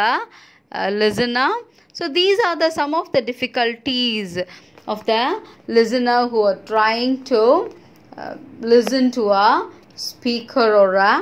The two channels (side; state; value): both; identical; correlation 1.00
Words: listener. So these are some of the difficulties of the listener who are trying to listen to a speaker or